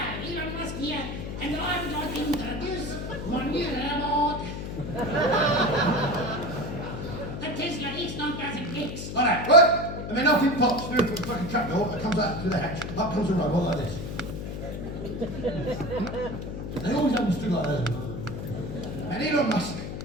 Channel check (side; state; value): left; noise; hum, 6 dB below the sound